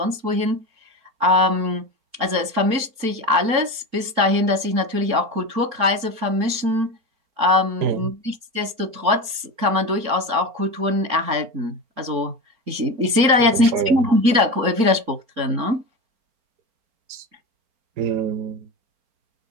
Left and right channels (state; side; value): late; left; 4.4 ms